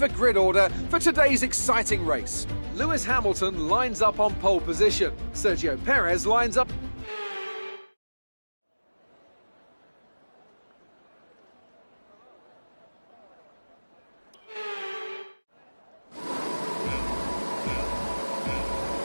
grid order for today's exciting race. Lewis Hamilton lines up on pole position. Sergio Perez lines up...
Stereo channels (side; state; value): both; inverted; correlation -1.00